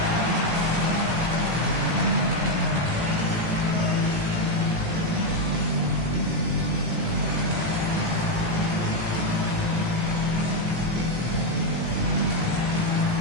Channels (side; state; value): left; late; 18 ms